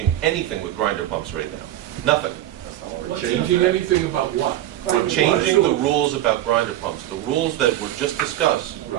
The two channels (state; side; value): quieter; left; 13.5 dB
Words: anything with grinder pumps right now. Nothing. Changing anything about what? We're changing the rules about grinder pumps. The rules that were just discussed